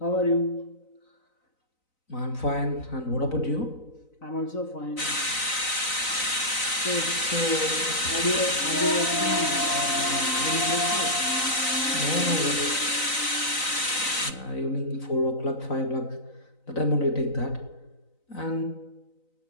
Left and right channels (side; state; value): right; late; 3.9 ms